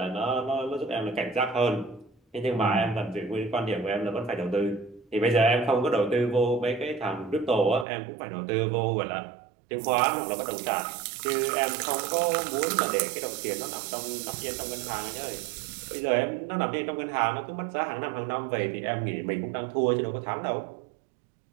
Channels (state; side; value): drops out; left; at 7.9 s